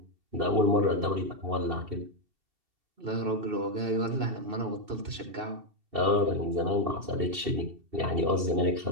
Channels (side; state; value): left; late; 2.7 ms